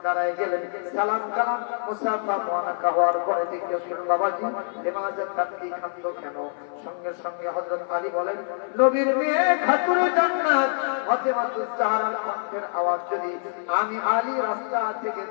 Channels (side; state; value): right; silent; 58 dB below the other